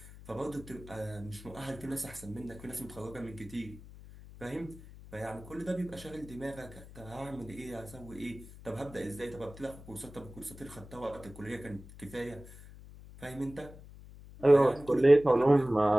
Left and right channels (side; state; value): left; noise; hum, 17 dB below the sound